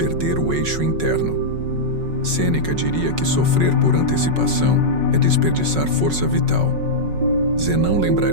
o eixo interno. Sêneca diria que sofrer por antecipação é desperdiçar força vital. Zenão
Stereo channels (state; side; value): late; left; 5.4 ms